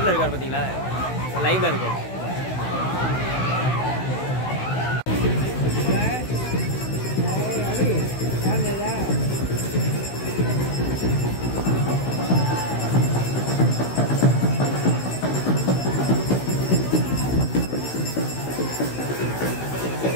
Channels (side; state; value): right; late; 16 ms